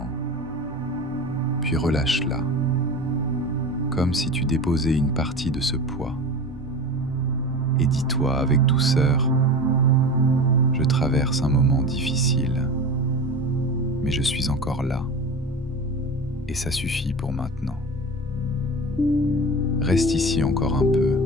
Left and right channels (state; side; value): noise; right; rumble, 24 dB below the sound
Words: puis relâche-la, comme si tu déposais une partie de ce poids. Et dis-toi avec douceur, je traverse un moment difficile, mais je suis encore là, et ça suffit pour maintenant. Reste ici encore un peu,